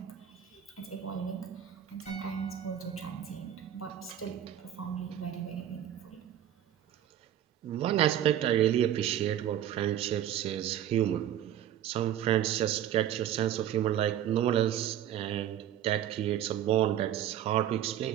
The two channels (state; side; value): quieter; left; 11.1 dB